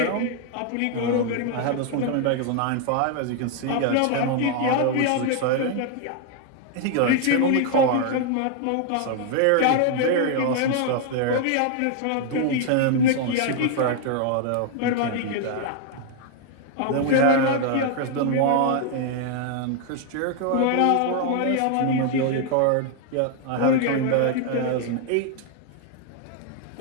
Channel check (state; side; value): different; both; correlation 0.00